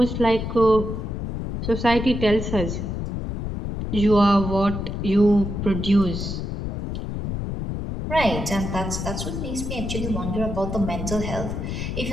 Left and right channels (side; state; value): left; noise; rumble, 4 dB below the sound